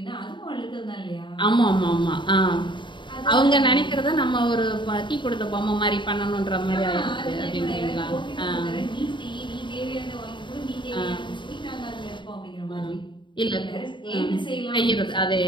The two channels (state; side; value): late; right; 0.23 ms